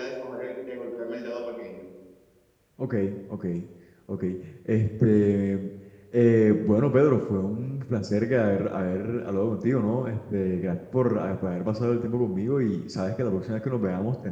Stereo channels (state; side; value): identical; both; correlation 1.00